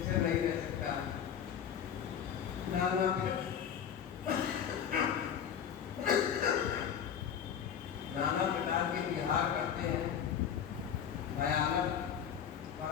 नहीं रह सकता। नाना प्रकार के विहार करते हैं। भयानक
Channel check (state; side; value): quieter; right; 8.5 dB